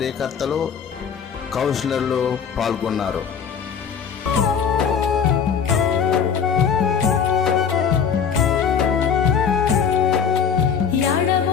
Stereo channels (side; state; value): right; quieter; 7.1 dB